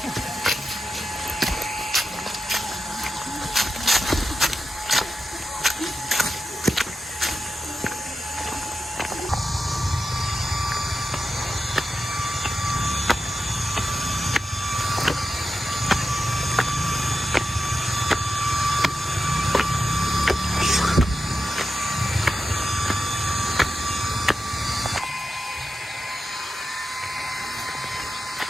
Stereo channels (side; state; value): both; normal; correlation 0.90